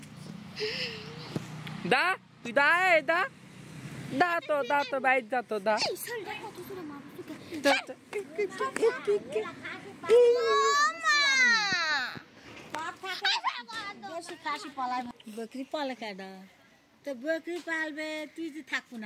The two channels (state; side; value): identical; both; correlation 1.00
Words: দা তুই দা দা দা তো বাইরে যা তো দা এই ঝোলটা কত সুরে মারবো বেশি কাশি পালায় বকরি পালে কেডা তো বকরি পালবে তুই যে থাকবো